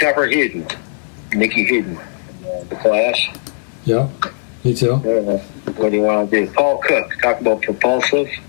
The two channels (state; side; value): silent; right; 63 dB below the other